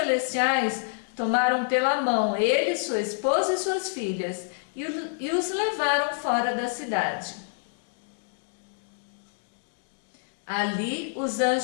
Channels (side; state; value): right; silent; digital silence